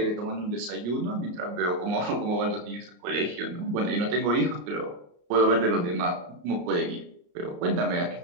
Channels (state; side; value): late; left; 34 ms